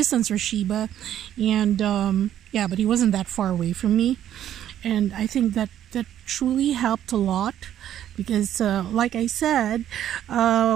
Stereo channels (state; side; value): quieter; left; 11.1 dB